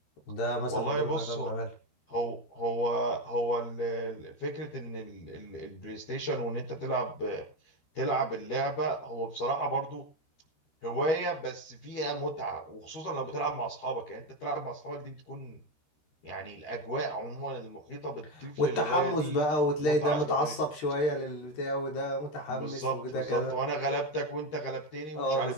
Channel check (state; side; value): late; right; 13 ms